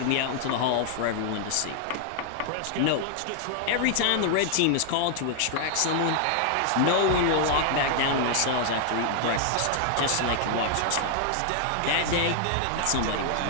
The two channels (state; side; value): different; both; correlation 0.00